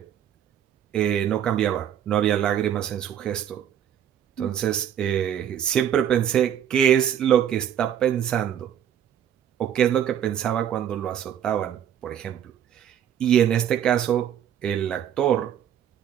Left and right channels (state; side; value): quieter; left; 9.7 dB